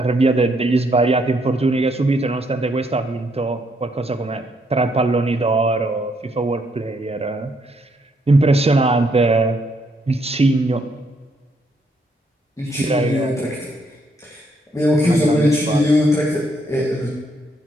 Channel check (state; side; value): normal; both; correlation 0.73